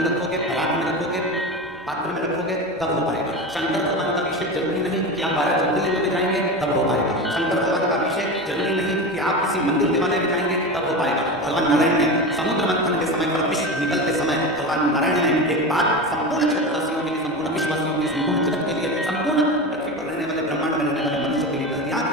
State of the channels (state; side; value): normal; both; correlation 0.24